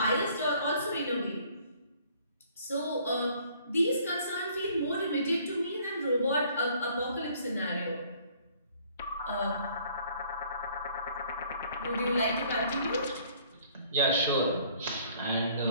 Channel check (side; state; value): both; inverted; correlation -0.58